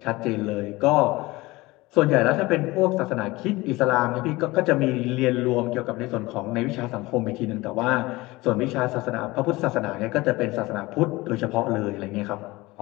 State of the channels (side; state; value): right; quieter; 20.8 dB